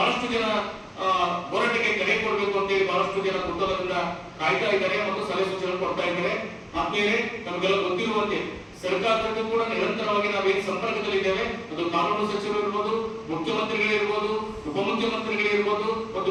ಜನ ಹೋರಾಟಕ್ಕೆ ಕರೆ ಕೊಡಬೇಕು ಅಂತೇಳಿ ಬಹಳಷ್ಟು ಜನ ಕುತೂಹಲದಿಂದ ಕಾಯ್ತಾ ಇದ್ದಾರೆ ಮತ್ತು ಸಲಹೆ ಸೂಚನೆ ಕೊಡ್ತಾ ಇದ್ದಾರೆ. ಆದ್ಮೇಲೆ ನಮಗೆಲ್ಲ ಗೊತ್ತಿರುವಂತೆ ಸರ್ಕಾರಕ್ಕೂ ಕೂಡ ನಿರಂತರವಾಗಿ ನಾವೇನು ಸಂಪರ್ಕದಲ್ಲಿದ್ದೇವೆ. ಅದು ಕಾನೂನು ಸಚಿವರು ಇರ್ಬೋದು, ಮುಖ್ಯಮಂತ್ರಿಗಳಿರ್ಬೋದು, ಉಪಮುಖ್ಯಮಂತ್ರಿಗಳಿರ್ಬೋದು, ಮತ್ತು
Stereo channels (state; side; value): identical; both; correlation 1.00